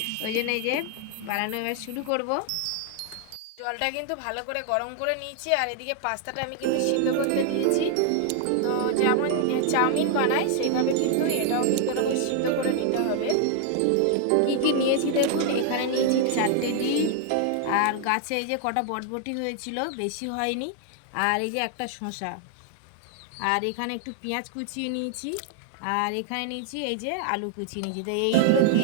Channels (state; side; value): different; both; correlation 0.00